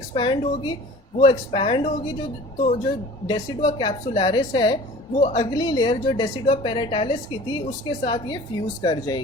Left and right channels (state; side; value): normal; both; correlation 0.43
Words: होगी, वो एक्सपैंड होगी जो, तो जो डेसिडुआ कैप्सुलैरिस है वो अगली लेयर जो डेसिडुआ पेराटालिस की थी उसके साथ ये फ्यूज़ कर